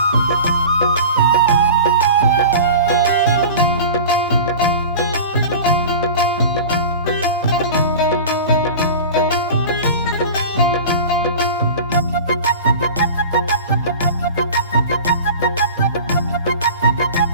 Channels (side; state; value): both; inverted; correlation -0.35